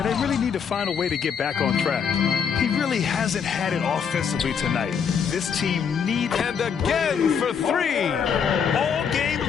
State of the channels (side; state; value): right; quieter; 6.9 dB